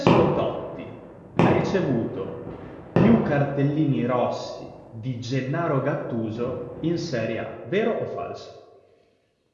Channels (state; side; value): identical; both; correlation 1.00